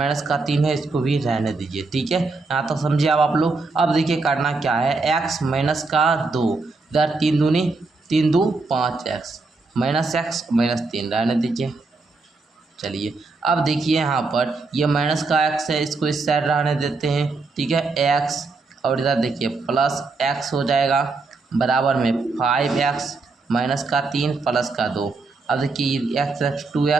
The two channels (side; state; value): left; quieter; 3.8 dB